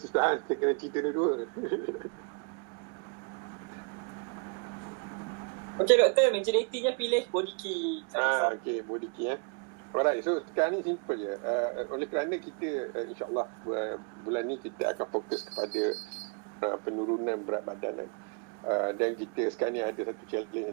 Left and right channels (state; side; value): quieter; left; 35.6 dB